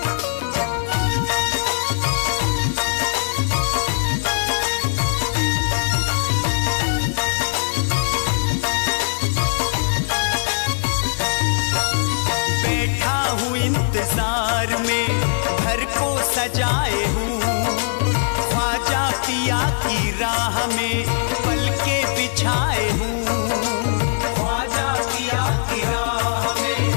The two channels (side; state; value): right; silent; 62 dB below the other